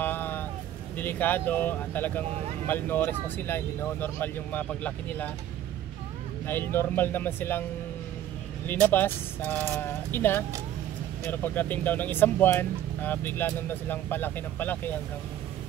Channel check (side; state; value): left; quieter; 11.8 dB